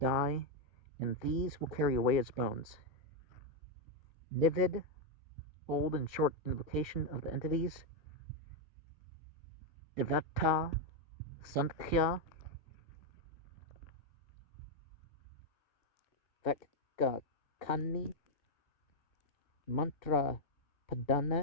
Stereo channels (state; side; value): late; right; 2.6 ms